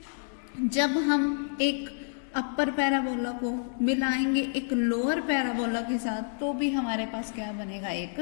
जब हम एक अपर पैराबोला को मिलाएंगे एक लोअर पैराबोला के साथ, तो भी हमारे पास क्या बनेगा?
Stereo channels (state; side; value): silent; right; 59 dB below the other